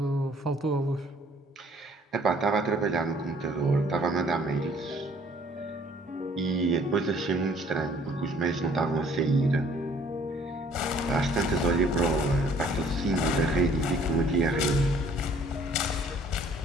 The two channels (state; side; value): normal; both; correlation 0.58